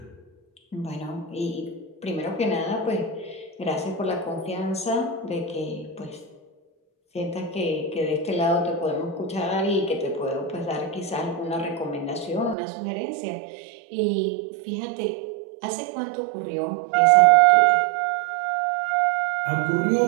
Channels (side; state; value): left; drops out; at 12.6 s